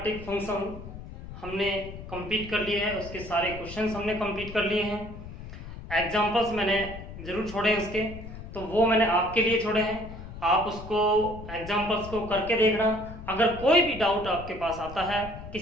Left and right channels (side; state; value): left; noise; rumble, 12 dB below the sound